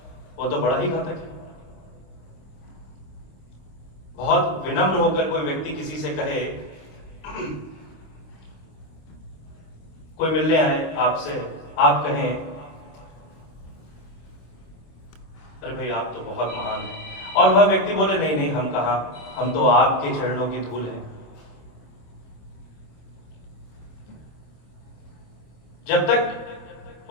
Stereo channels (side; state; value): right; late; 26 ms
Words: वो तो बड़ा ही घातक है। बहुत विनम्र होकर कोई व्यक्ति किसी से कहे, कोई मिलने आए आपसे, आप कहें, अरे भाई आप तो बहुत महान हैं, और वह व्यक्ति बोले, नहीं नहीं हम कहा, हम तो आपके चरणों की धूल हैं। जब तक